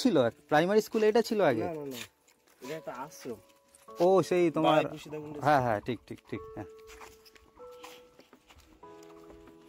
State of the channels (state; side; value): identical; both; correlation 1.00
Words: ছিল? প্রাইমারি স্কুল এটা ছিল আগে? এটা একটা আশ্রম। ও সেই তোমার, হ্যাঁ হ্যাঁ ঠিক ঠিক ঠিক, হ্যাঁ।